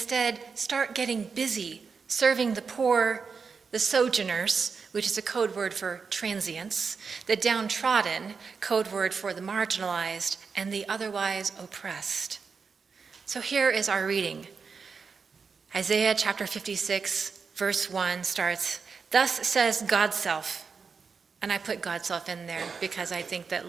start getting busy serving the poor, the sojourners, which is a code word for transients, the downtrodden, code word for the marginalized, and the otherwise oppressed. So here is our reading. Isaiah chapter 56, verse 1 starts, "Thus says God's self," and I put God's self in there because I think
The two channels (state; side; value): quieter; left; 5.4 dB